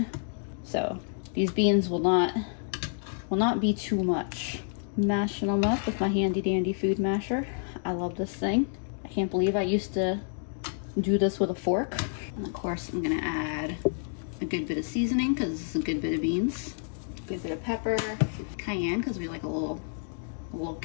So these beans will not be too much. Mashing them up with my handy dandy food masher. I love this thing. I can't believe I used to do this with a fork. And of course I'm gonna add a good bit of seasoning, because this is a good bit of beans. Good bit of pepper, cayenne, because we like a little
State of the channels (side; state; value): right; silent; digital silence